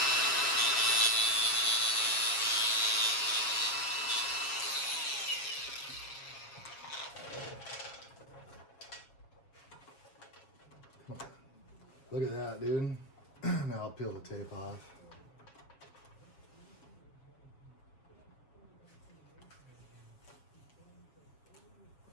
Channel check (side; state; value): right; late; 7.2 ms